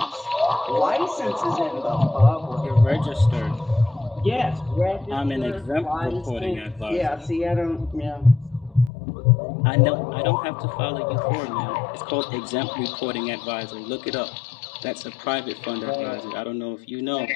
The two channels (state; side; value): drops out; right; at 8.9 s